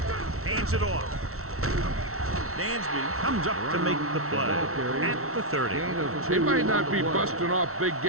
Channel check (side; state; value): left; late; 0.63 ms